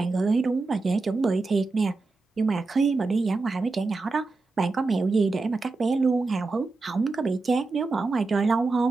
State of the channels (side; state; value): left; quieter; 3.7 dB